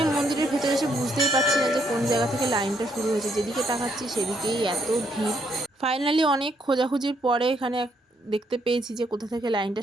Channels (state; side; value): normal; both; correlation 0.72